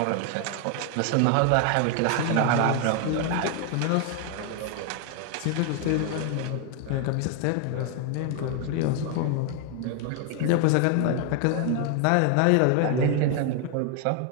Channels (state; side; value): different; both; correlation 0.00